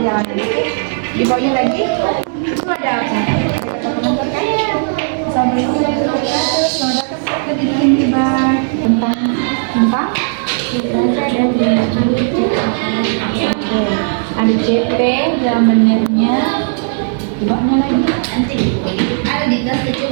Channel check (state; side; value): silent; left; digital silence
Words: Di bawahnya lagi itu ada apa? Ada kata pengantar kan? Assalamualaikum warahmatullahi wabarakatuh. Selamat datang ke Didikan Tiba tentang ada CP, jam menitnya, di bawahnya lagi. Nanti ada di tas